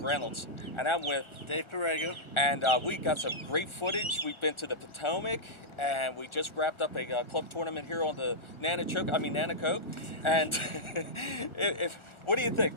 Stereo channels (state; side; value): late; right; 1.4 ms